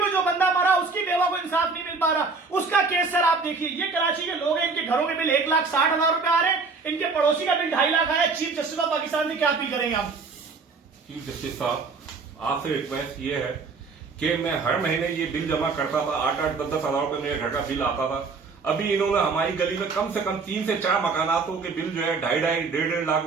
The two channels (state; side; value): quieter; left; 4.5 dB